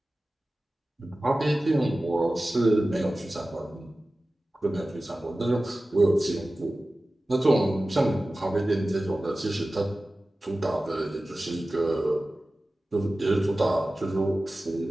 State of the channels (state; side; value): normal; both; correlation 0.96